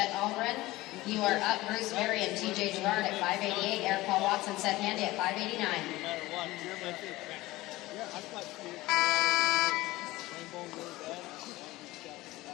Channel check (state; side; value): quieter; right; 18.7 dB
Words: Albrin. You are up, Bruce Berry and TJ Gerard at 588. Eric Paul Watson, Seth Handy at 589. No matter what, you're my too. Yeah, I thought you rainbow really bad.